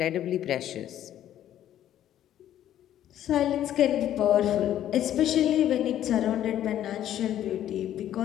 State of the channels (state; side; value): quieter; right; 11.6 dB